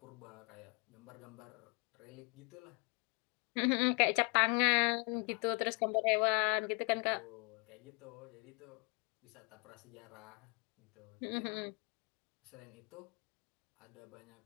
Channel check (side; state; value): right; quieter; 34.3 dB